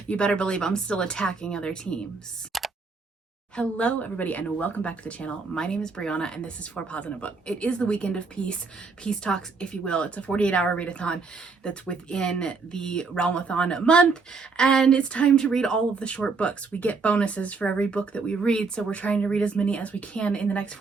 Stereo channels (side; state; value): left; quieter; 4.4 dB